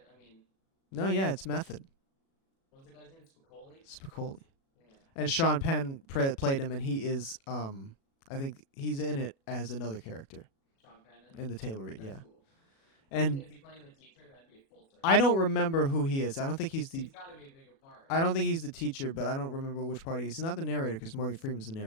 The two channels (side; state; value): right; late; 37 ms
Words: I mean. No, yeah, it's method. What was the guy's name? Spicoli. Yeah. And Sean Penn played him, and he is, I think he's in it as another character. Sean Penn in the table read, that's yeah. Cool. And is he playing the teacher? That'd be a full circle. I don't remember who he is. I don't think he's the. He's got to be a bigger part. Right? I don't think he's the teacher, but I don't remember which part he is. He's not the narrator because Morgan Freeman's the